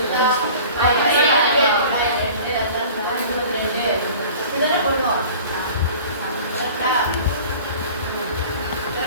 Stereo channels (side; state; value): both; inverted; correlation -0.43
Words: இதெல்லாம் பண்ணுவோம். கரெக்டா?